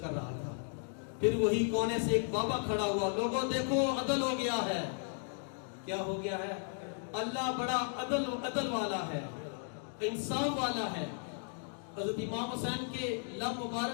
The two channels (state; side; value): silent; right; 54 dB below the other